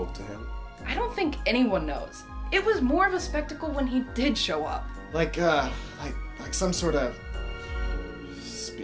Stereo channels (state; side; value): identical; both; correlation 1.00